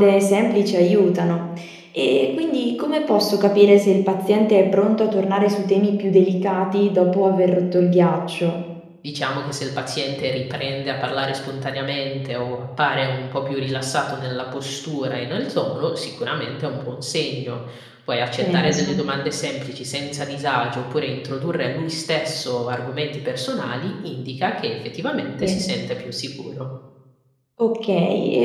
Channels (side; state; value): both; identical; correlation 1.00